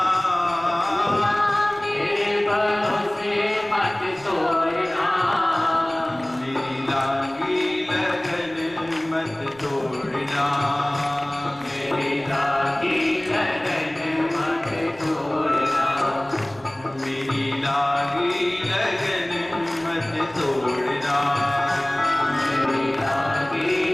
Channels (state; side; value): noise; right; rumble, 26 dB below the sound